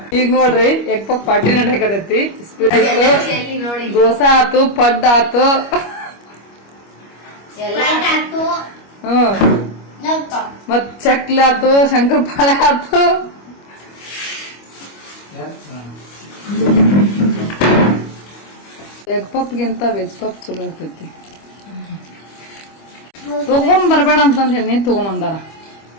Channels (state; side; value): late; right; 25 ms